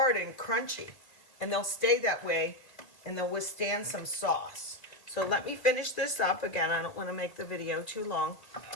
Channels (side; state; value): right; late; 1.8 ms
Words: and crunchy, and they'll stay that way, and they'll withstand some sauce. So let me finish this up. Again, I don't want to make the video too long,